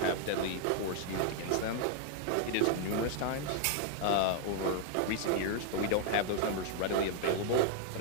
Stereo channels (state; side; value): different; both; correlation -0.01